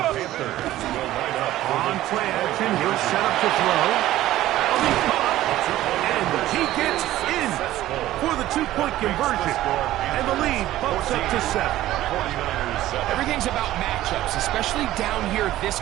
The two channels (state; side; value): quieter; left; 14.7 dB